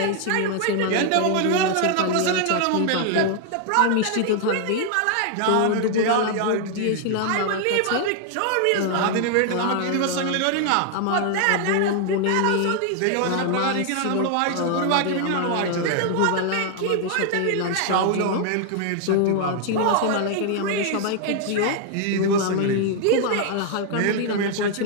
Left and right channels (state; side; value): different; both; correlation 0.00